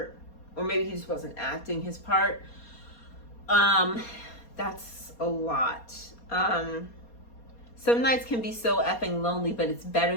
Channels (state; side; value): late; right; 4.2 ms